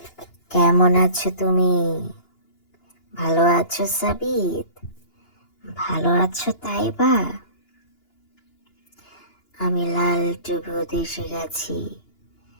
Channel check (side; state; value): right; late; 2.9 ms